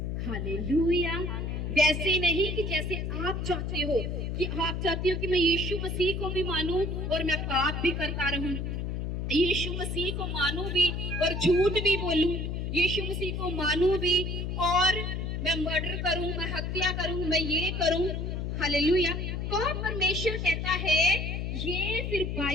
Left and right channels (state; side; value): noise; left; hum, 3 dB below the sound